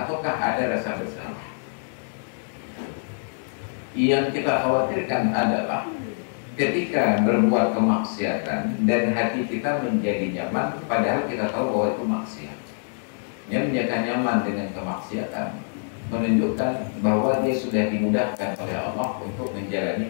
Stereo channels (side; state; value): right; silent; digital silence